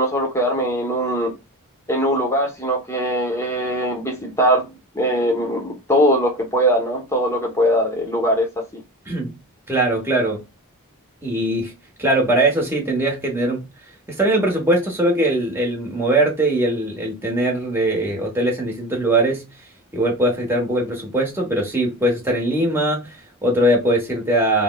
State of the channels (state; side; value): normal; both; correlation 0.32